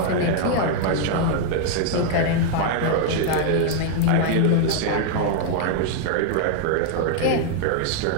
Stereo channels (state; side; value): different; both; correlation 0.00